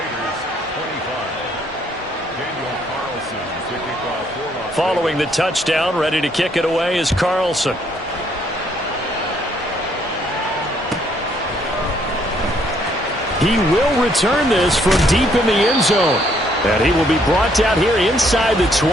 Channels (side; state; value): both; normal; correlation 0.68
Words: Following the touchdown, ready to kick it away is Carlson. He will return this from deep in the end zone. And he will be brought down here inside the